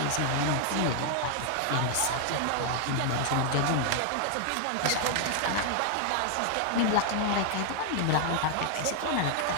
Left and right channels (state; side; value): different; both; correlation 0.00